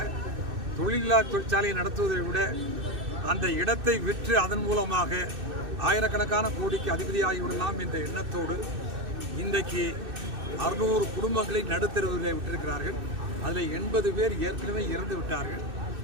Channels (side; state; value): left; late; 2.6 ms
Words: தொழிற்சாலையை நடத்துவதை விட அந்த இடத்தை விற்று அதன் மூலமாக ஆயிரக்கணக்கான கோடிக்கு அதிபதியாகிவிடலாம் என்ற எண்ணத்தோடு இன்றைக்கு 600 குடும்பங்களை நடுத்தருவில் விட்டிருக்கிறார்கள். அதில் 80 பேர் ஏற்கனவே இறந்து விட்டார்கள்.